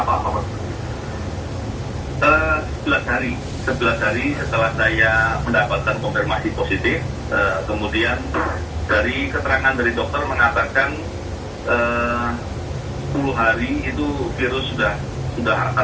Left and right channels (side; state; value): both; identical; correlation 1.00